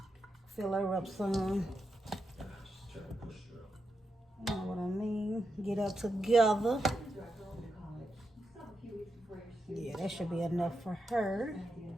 Fill her up some. You know what I mean? Get her together. Yeah, that should be enough for her.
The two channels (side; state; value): both; normal; correlation 0.86